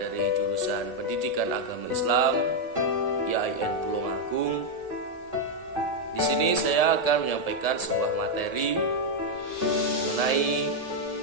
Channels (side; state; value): left; late; 1.7 ms